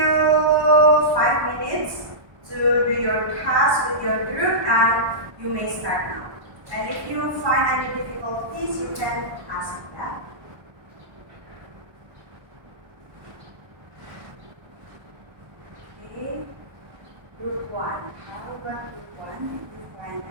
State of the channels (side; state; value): left; late; 1.1 ms